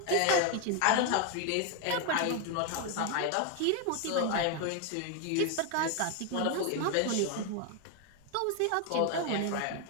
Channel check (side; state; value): both; different; correlation 0.01